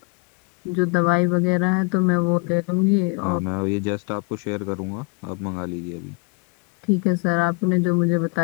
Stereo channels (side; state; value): right; quieter; 32.5 dB